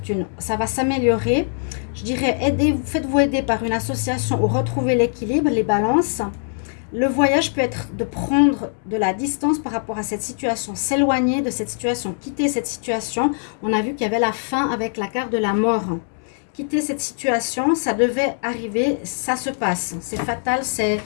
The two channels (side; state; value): right; silent; digital silence